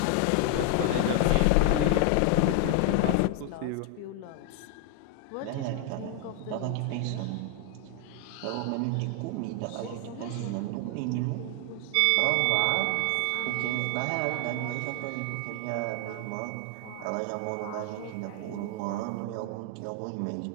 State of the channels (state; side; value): different; both; correlation 0.00